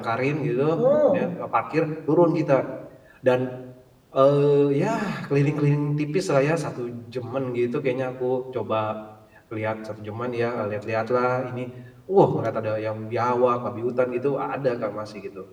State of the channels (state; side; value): identical; both; correlation 1.00